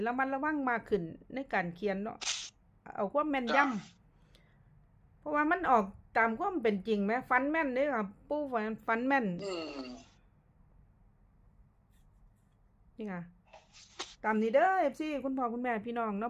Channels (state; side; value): identical; both; correlation 1.00